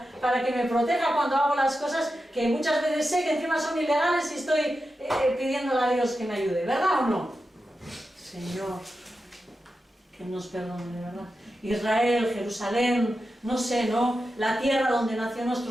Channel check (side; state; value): both; normal; correlation 0.90